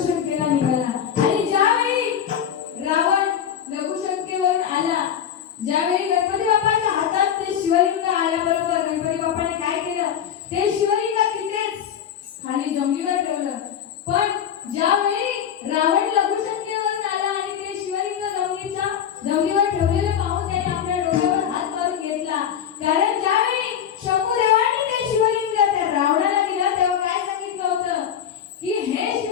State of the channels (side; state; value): right; quieter; 8.8 dB